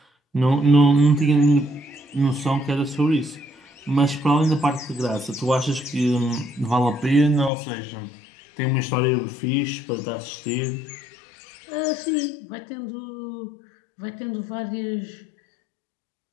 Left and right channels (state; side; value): drops out; right; at 7.5 s